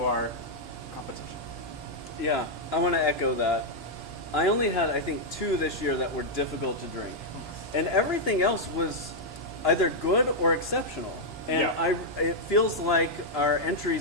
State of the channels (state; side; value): normal; both; correlation -0.03